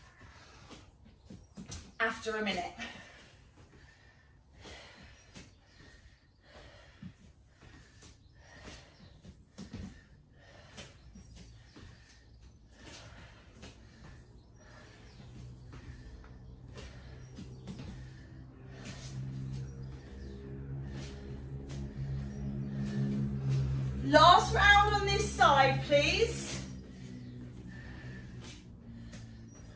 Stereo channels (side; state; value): both; identical; correlation 1.00